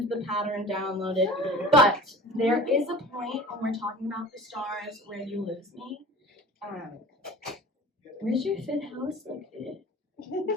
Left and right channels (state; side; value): normal; both; correlation 0.41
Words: the pattern downloaded. But there is a point when we're talking about the stars where you lose me. Where's your fifth house located?